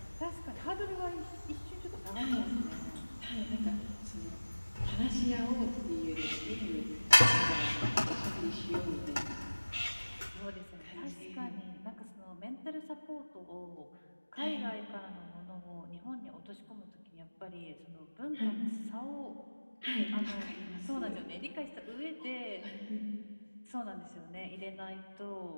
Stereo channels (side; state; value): both; inverted; correlation -1.00